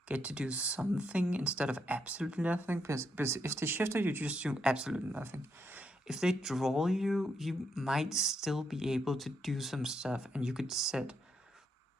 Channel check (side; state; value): both; normal; correlation 0.78